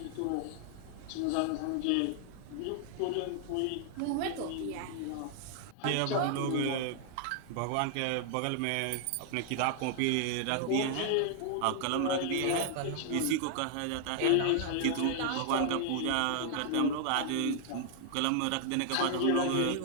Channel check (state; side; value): different; both; correlation 0.00